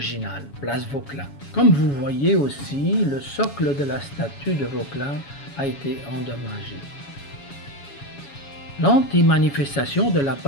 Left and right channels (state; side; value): late; right; 7.2 ms